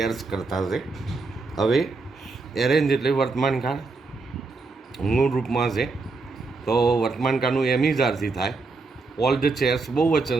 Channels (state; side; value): quieter; left; 3.9 dB